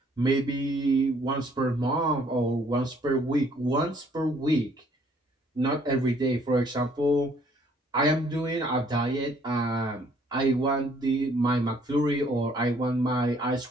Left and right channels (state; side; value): normal; both; correlation 0.62